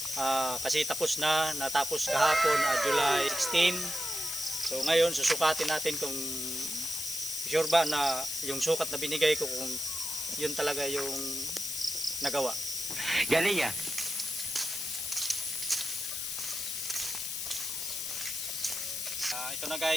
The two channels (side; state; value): left; noise; hiss, 3 dB below the sound